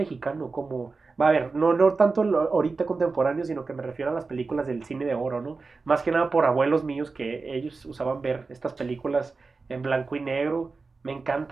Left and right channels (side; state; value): left; quieter; 4.1 dB